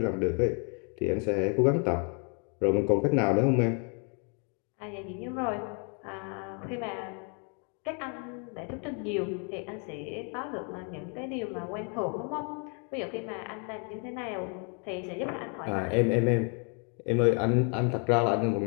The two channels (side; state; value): right; quieter; 38.6 dB